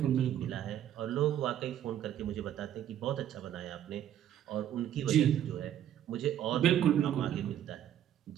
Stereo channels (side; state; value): left; quieter; 10.8 dB